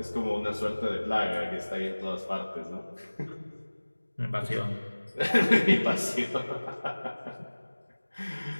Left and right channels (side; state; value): both; inverted; correlation -1.00